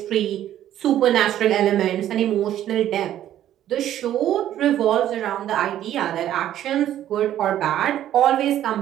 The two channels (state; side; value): quieter; left; 11.9 dB